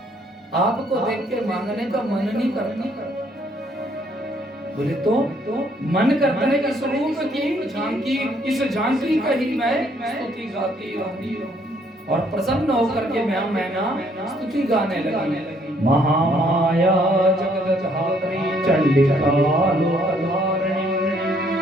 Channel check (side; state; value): both; normal; correlation 0.66